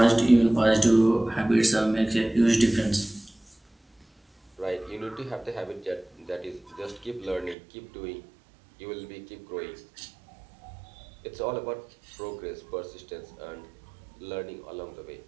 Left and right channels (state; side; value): drops out; left; at 7.6 s